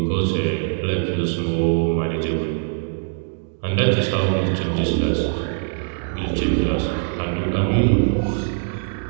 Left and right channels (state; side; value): silent; left; digital silence